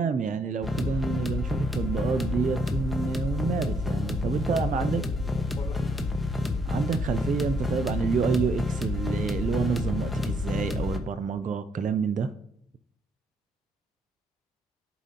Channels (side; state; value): both; normal; correlation 0.70